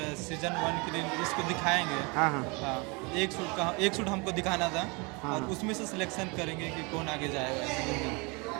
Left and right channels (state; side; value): quieter; left; 29.3 dB